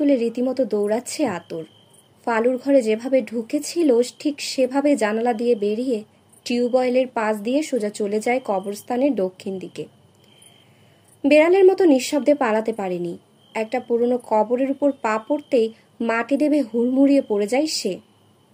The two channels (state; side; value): identical; both; correlation 1.00